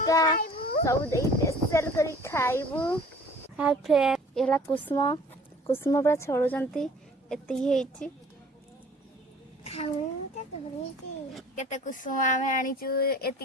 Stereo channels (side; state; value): both; normal; correlation 0.49